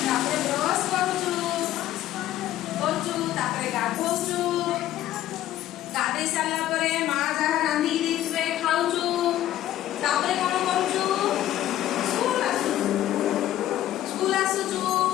ତାପରେ ବ୍ରଶ କରୁଛୁ ତାପରେ ଗାଧଉଛୁ ଗାଧେଇ ସାରିଲା ପରେ ମା ଯାହା ରାନ୍ଧିକି ଦେଇଥିବେ ଖାଉଛୁ ତାପରେ କଣ କରୁଛୁ? ସ୍କୁଲ ଆସୁଛୁ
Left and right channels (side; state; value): right; quieter; 13.2 dB